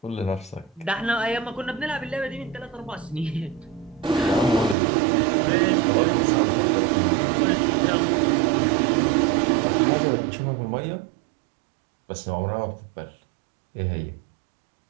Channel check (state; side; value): drops out; left; at 4.8 s